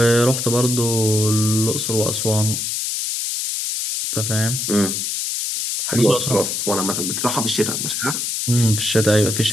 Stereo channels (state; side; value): noise; left; hiss, 2 dB below the sound